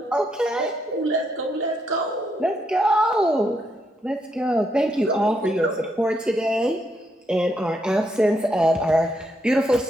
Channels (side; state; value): both; normal; correlation 0.77